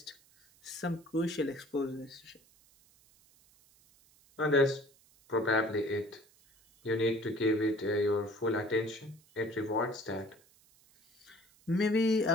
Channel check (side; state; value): right; noise; hiss, 30 dB below the sound